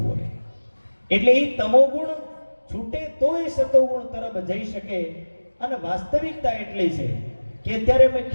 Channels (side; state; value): both; inverted; correlation -1.00